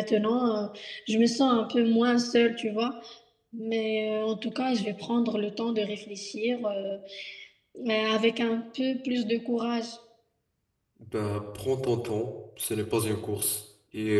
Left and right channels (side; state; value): both; identical; correlation 1.00